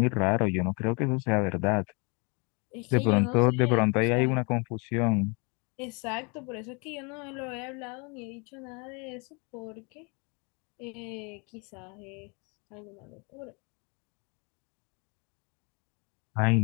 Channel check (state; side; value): quieter; right; 32.1 dB